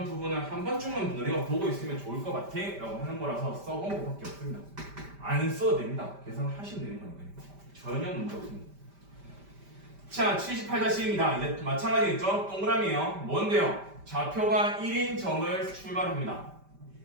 부분을 한 번쯤은 너네가 보고 있으면 좋을 것 같아 라고 하는 거라서 써본 것밖에 없습니다. 안 써도 됩니다. 계산하시면 되는 거니까요. 전혀 문제 없습니다. 자, 78-1입니다. 이제 마찬가지겠죠? 동그라미예요. 뭔데요? 좌표가 1인 점을 출발합니다.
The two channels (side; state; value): left; late; 5.1 ms